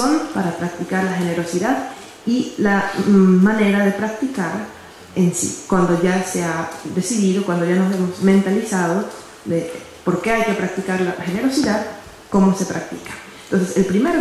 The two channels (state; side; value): identical; both; correlation 1.00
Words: para practicar la generosidad y la manera de practicar en sí, cuando ya se ha decidido, cuando ya nos hemos mentalizado de por qué hay que practicar la generosidad, cómo se practica. Entonces, el primer